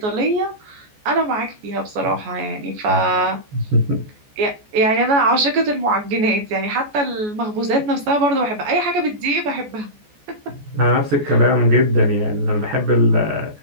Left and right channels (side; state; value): left; late; 14 ms